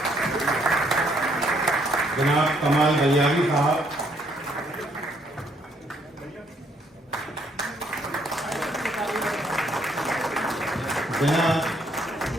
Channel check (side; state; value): both; normal; correlation 0.68